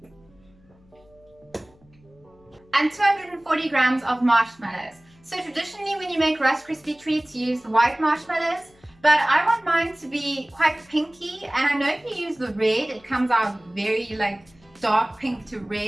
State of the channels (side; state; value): left; noise; hum, 30 dB below the sound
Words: and 240 grams of marshmallows. So traditionally when you make Rice Krispie treats, you use the white marshmallows, but I want mine to be quite pinky, and I know if you use the red, it comes out very like dark pink to